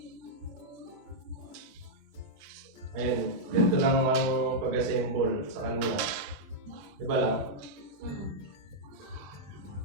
Ayun, ganito lang ang pag-assemble sa kanila. Diba lang?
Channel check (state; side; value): late; left; 20 ms